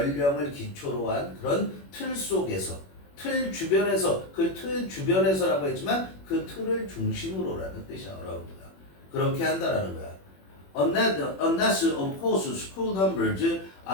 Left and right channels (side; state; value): right; late; 21 ms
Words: 기초로 한 그런 틀 속에서 틀 주변에서 그 틀 주변에서라고 했지만 그 틀을 중심으로라는 뜻이야. around가. 그렇게 한다라는 거야. Unless of course school numbers